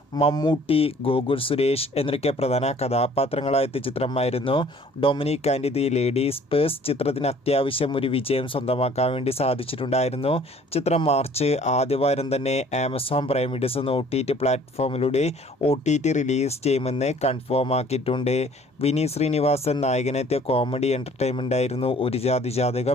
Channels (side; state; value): both; normal; correlation 0.54